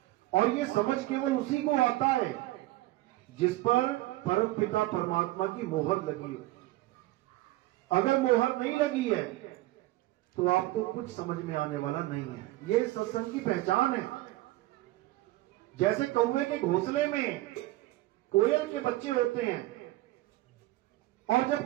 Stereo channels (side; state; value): left; quieter; 17.8 dB